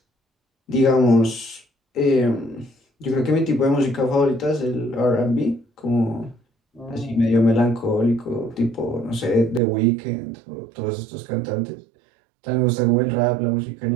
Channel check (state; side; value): drops out; left; at 9.6 s